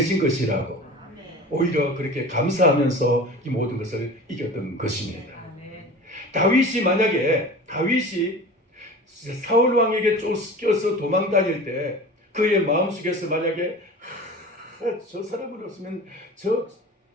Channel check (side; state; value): both; normal; correlation 0.37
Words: 것이라고 오히려 그렇게 감사하면서 이 모든 것을 이겼던 것입니다. 다윗이 사울 왕에게 쫓겨서 도망 다닐 때 그의 마음속에서 만약에 저 사람을 없으면